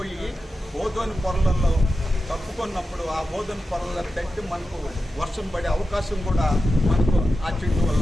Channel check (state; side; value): normal; both; correlation 0.92